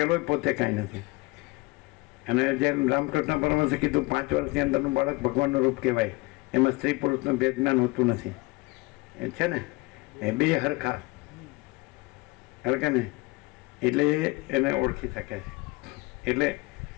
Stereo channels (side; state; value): right; quieter; 24.0 dB